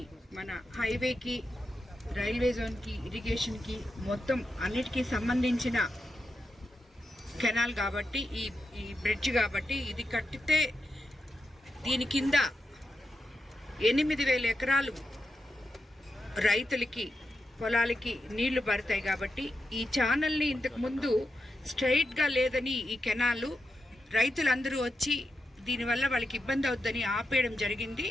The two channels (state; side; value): normal; both; correlation 0.87